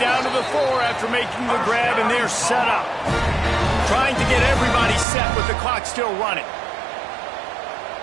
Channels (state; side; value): drops out; left; at 5.1 s